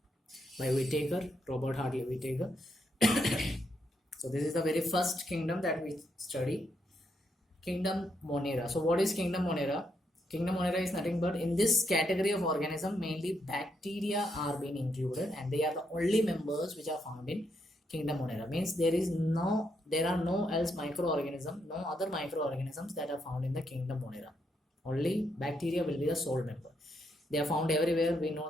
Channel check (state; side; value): normal; both; correlation 0.78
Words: Whittaker, Robert Hartley Whittaker. So this is the very first kingdom that we study. Kingdom Monera. So what is Kingdom Monera? Kingdom Monera is nothing but in this category of organism, mainly bacteria are being included, and they are the only members which are found in Kingdom Monera. Means there are no else microorganism, no other microorganisms that are found in the Kingdom Monera. Only bacteria will be the sole member. They are found everywhere. We know